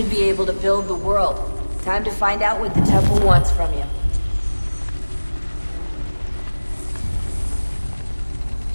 be able to build the world. Time to find out what the temple wants from you.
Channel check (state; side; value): inverted; both; correlation -1.00